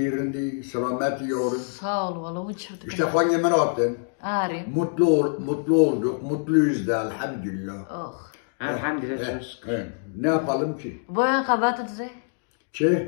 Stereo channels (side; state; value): right; silent; 62 dB below the other